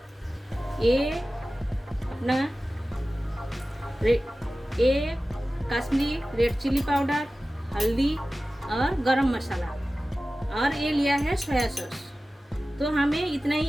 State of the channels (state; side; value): normal; both; correlation 0.96